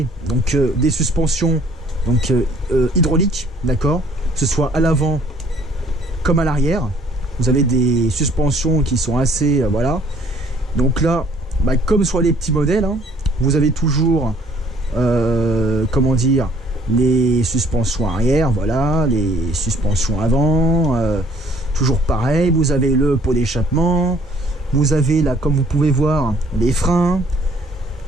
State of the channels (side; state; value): both; normal; correlation 0.59